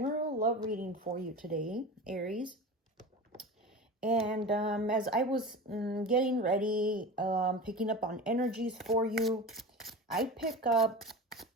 love reading for you today, Aries. And as I was getting ready, picking up on energies for you, I pick up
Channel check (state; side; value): normal; both; correlation 0.30